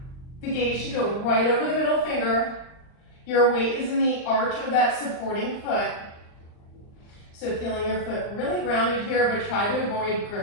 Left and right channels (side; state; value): right; late; 39 ms